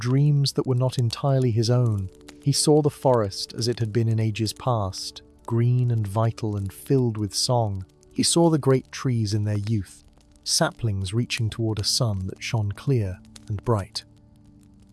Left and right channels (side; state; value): both; identical; correlation 1.00